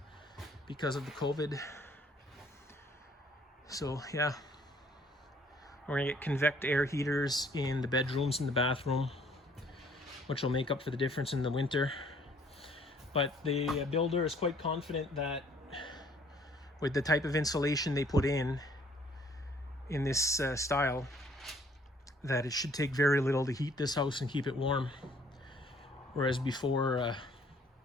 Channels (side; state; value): both; normal; correlation 0.60